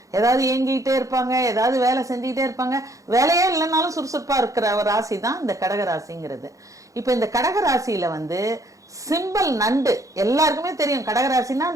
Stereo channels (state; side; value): late; left; 0.16 ms